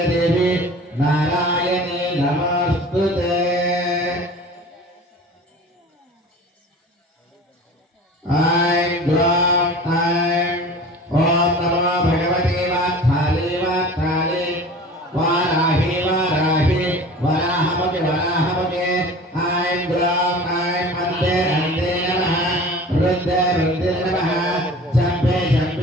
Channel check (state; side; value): normal; both; correlation 0.40